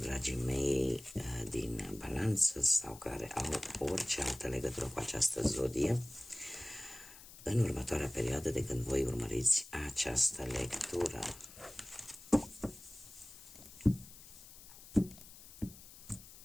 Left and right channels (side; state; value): left; noise; hiss, 18 dB below the sound